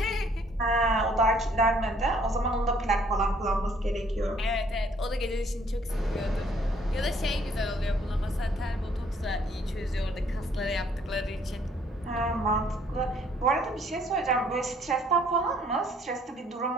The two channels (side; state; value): both; normal; correlation 0.62